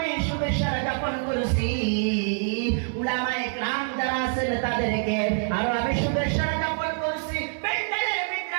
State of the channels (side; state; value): left; silent; 60 dB below the other